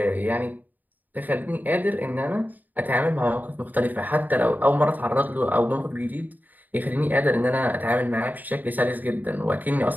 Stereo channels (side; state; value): left; late; 0.084 ms